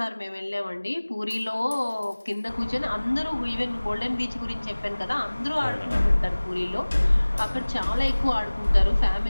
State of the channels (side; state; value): both; inverted; correlation -1.00